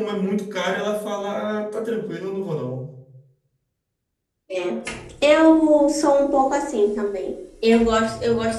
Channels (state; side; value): identical; both; correlation 1.00